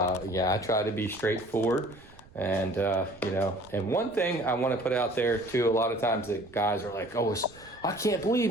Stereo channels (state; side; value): noise; right; rumble, 24 dB below the sound